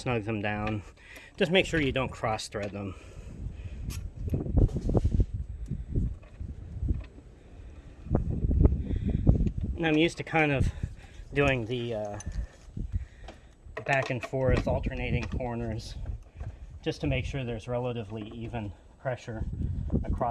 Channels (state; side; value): identical; both; correlation 1.00